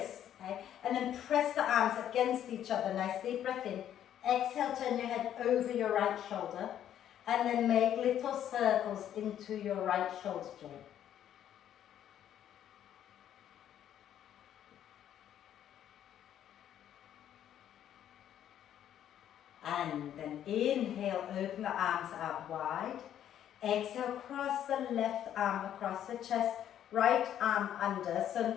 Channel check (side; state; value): right; quieter; 10.6 dB